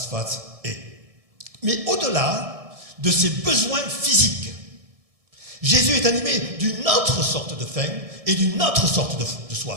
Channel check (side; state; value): left; late; 1.6 ms